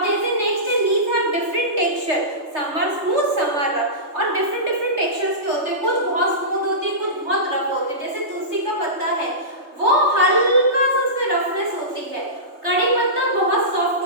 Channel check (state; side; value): late; left; 3.3 ms